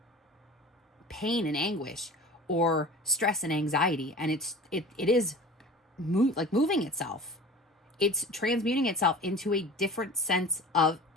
pain and anguish or stress and anxiety. And it is moving itself. It's transmuting itself into a different sense of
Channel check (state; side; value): normal; both; correlation 0.38